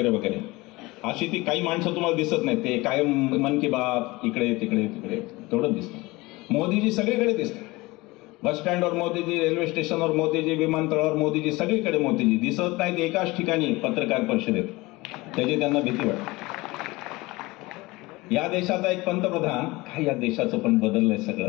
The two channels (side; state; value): right; quieter; 21.8 dB